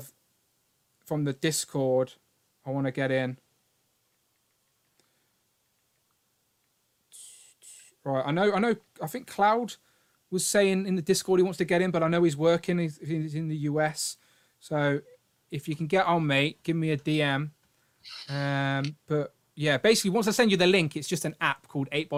from the Discord, I want to get in. Right, I know, I think Cloud was saying in the Discord he wants to get in, but I know he's working, he's in the US. So if you can get on, mate, give me a DM. But yeah, basically, once I send you the link, it's just an app called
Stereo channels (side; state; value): both; identical; correlation 1.00